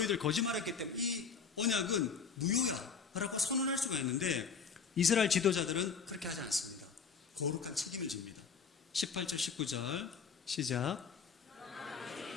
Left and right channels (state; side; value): quieter; right; 5.9 dB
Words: 거짓말했기 때문에 이 언약은 무효야 라고 선언할 수가 있는데 이스라엘 지도자들은 그렇게 하지 않습니다. 거룩한 책임을 집니다. 18절 19절 시작.